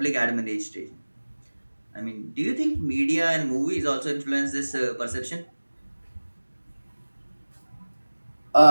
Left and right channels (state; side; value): inverted; both; correlation -1.00